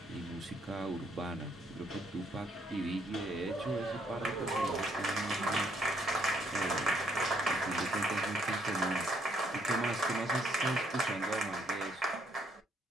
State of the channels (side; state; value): both; normal; correlation 0.69